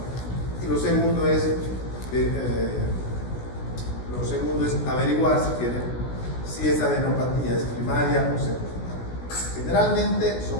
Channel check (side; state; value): right; late; 16 ms